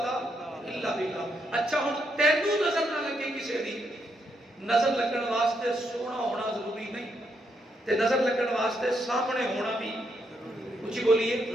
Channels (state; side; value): normal; both; correlation 0.79